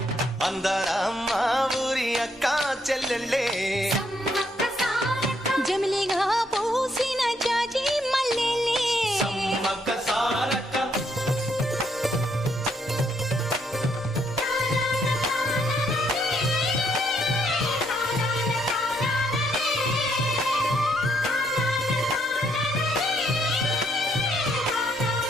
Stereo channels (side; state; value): both; normal; correlation 0.72